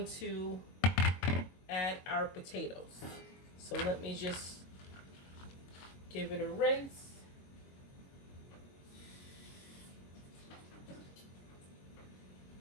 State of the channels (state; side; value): late; right; 22 ms